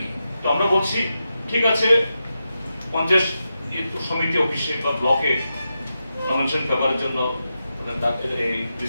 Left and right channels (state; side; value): inverted; both; correlation -0.89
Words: তো আমরা বলছি ঠিক আছে, পঞ্চায়েত সমিতি অফিসে বা ব্লকে নমিনেশন পেপারের জন্য